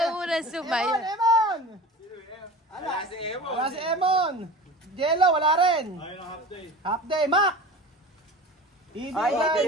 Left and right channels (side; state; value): both; normal; correlation 0.35